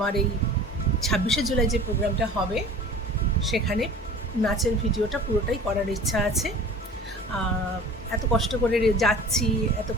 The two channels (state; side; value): normal; both; correlation 0.43